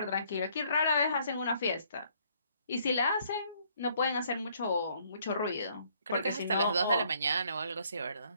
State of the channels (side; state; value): both; inverted; correlation -0.65